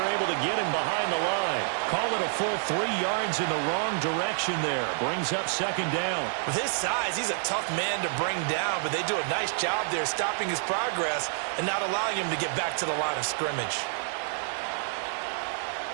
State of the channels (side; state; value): left; silent; digital silence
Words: able to get him behind the line. Call it a full 3 yards in the wrong direction there. Brings up second down. With his size, he's a tough man to bring down, but they do a nice job there stopping his progress and not allowing him to get back to the line of scrimmage.